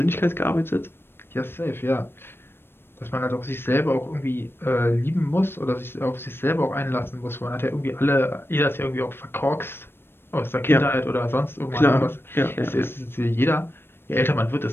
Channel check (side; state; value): right; late; 0.11 ms